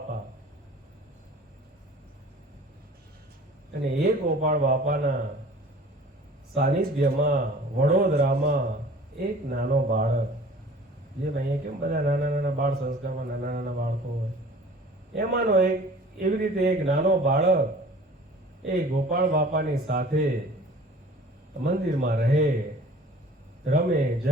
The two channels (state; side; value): normal; both; correlation 0.46